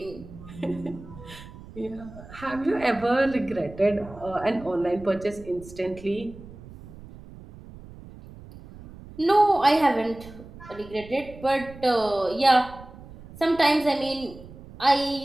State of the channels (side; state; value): right; noise; rumble, 17 dB below the sound